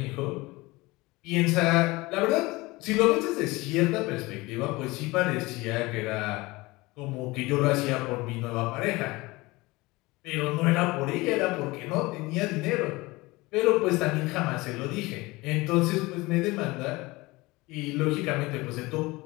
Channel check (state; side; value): quieter; right; 22.0 dB